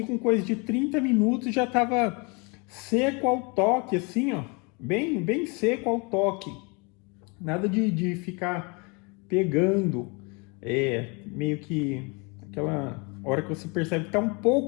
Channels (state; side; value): quieter; right; 30.6 dB